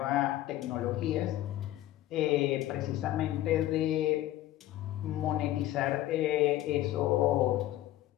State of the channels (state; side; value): quieter; right; 14.5 dB